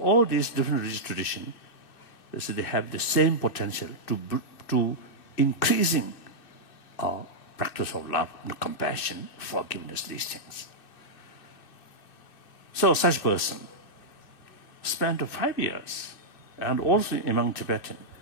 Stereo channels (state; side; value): late; right; 2.6 ms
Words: these different religious traditions, so they have the same potential to increasing our practice of love, compassion, forgiveness, these things. So such person spent 5 years, and also among Tibetan,